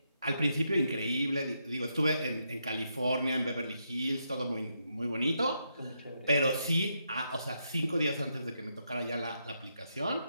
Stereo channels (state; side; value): inverted; both; correlation -0.81